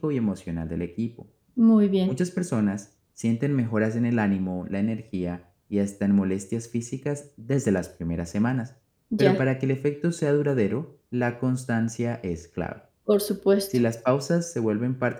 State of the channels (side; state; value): both; identical; correlation 1.00